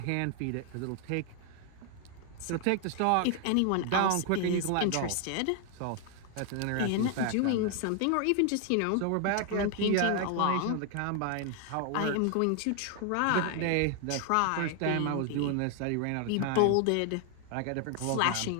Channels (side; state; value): both; different; correlation 0.00